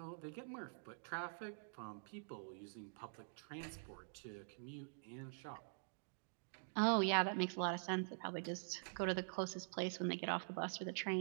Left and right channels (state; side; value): silent; left; digital silence